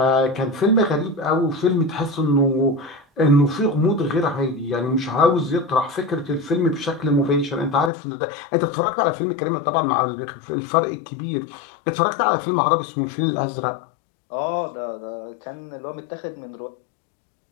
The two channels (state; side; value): drops out; right; at 7.9 s